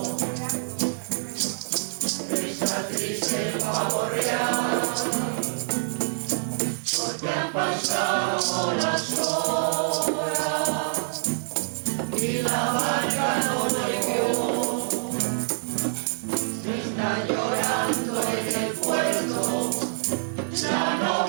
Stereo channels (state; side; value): silent; left; digital silence